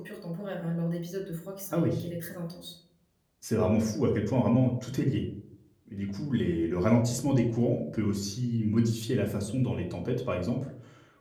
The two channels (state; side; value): identical; both; correlation 1.00